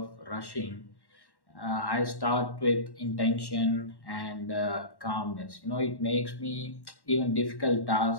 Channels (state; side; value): late; right; 1.1 ms